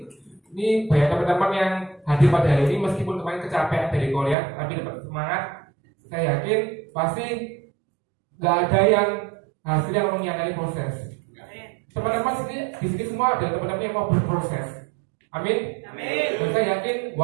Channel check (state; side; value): drops out; left; at 4.4 s